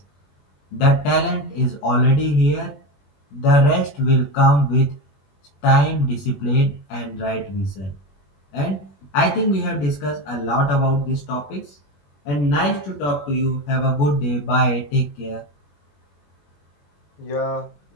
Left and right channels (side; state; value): right; late; 21 ms